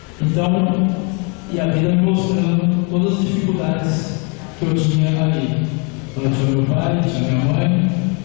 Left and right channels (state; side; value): quieter; right; 34.4 dB